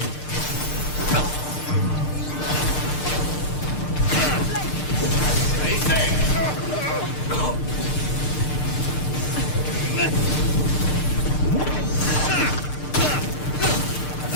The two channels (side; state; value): right; late; 6.6 ms